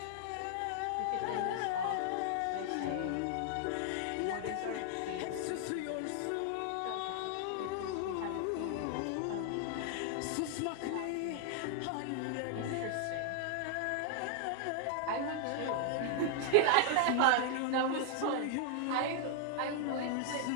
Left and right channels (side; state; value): both; different; correlation -0.01